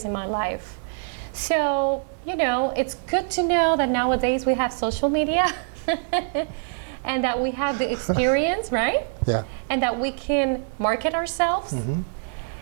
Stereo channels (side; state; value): left; silent; digital silence